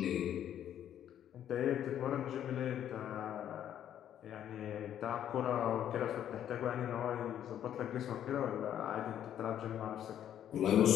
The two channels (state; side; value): quieter; right; 10.4 dB